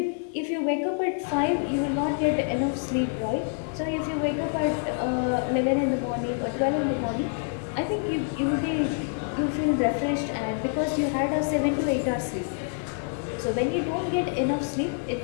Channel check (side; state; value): right; silent; 59 dB below the other